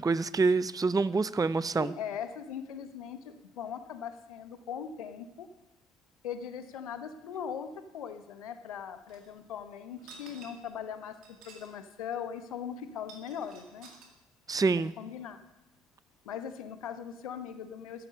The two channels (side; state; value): both; normal; correlation 0.72